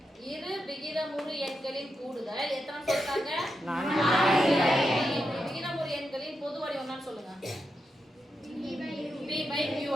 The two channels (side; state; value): both; normal; correlation 0.86